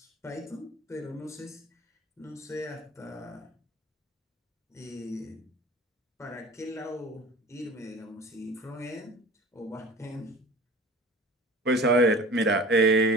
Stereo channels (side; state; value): both; normal; correlation 0.41